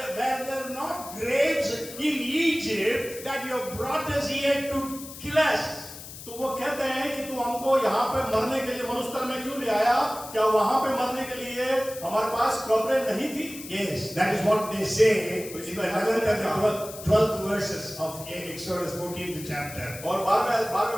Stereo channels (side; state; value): left; noise; hiss, 13 dB below the sound